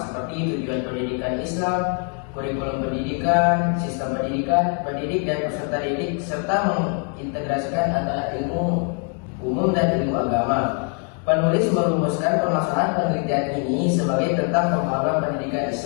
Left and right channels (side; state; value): right; quieter; 39.6 dB